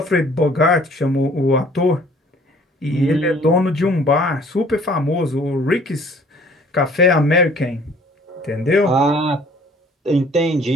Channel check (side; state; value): both; normal; correlation 0.54